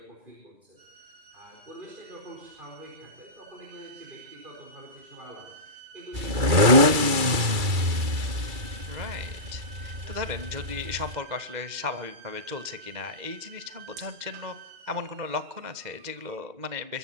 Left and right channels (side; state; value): left; late; 2.3 ms